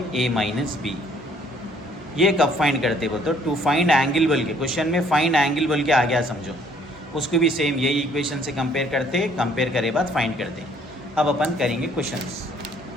A minus B। ये कब find करते बोलते हो, टू फाइंड एंगल बोल के। क्वेश्चन में फाइंड एंगल बोल के आ गया समझो, उसको भी सेम यही इक्वेशन से कंपेयर करते, कंपेयर करे बाद फाइंड करते। अब अपन करेंगे क्वेश्चंस।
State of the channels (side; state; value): both; normal; correlation 0.62